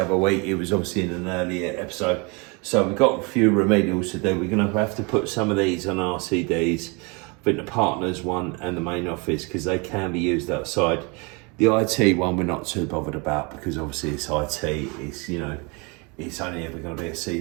week. It was obviously in an earlier episode. So we've got a few remedials to do. We're going to have to put some of these on RCDs. I think the partners one and the main office because they can be used outside. The IT one we're not too bothered about because obviously it's IT. It's, you know, it's only ever going to be a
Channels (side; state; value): left; quieter; 30.0 dB